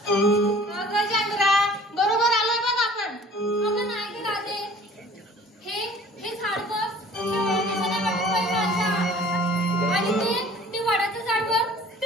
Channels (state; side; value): normal; both; correlation 0.49